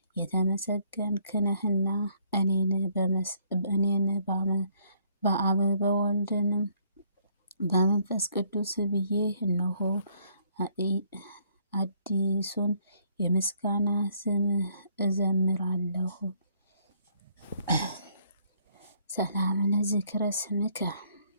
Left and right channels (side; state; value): both; inverted; correlation -0.66